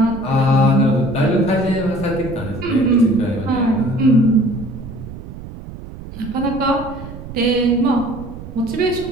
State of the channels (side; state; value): right; noise; rumble, 13 dB below the sound